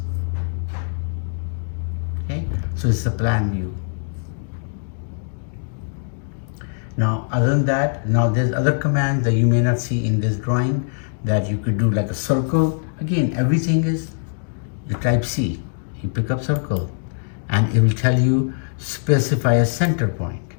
Okay, so it's a plan view. Now other than that, now there's other commands that you may not see in this drawing that you could do, like a circle. Again, everything is, you type C, you pick up circle, and it will tell you specify a center point,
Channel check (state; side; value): silent; right; digital silence